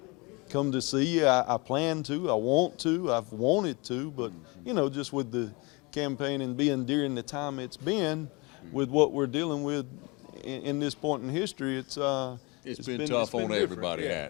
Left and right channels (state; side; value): quieter; right; 27.4 dB